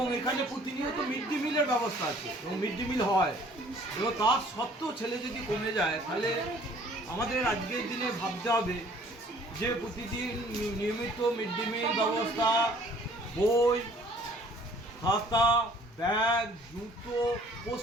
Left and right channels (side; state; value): both; normal; correlation 0.56